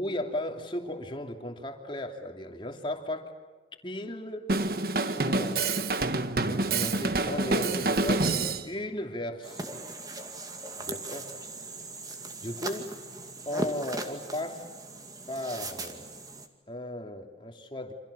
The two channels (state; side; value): normal; both; correlation 0.38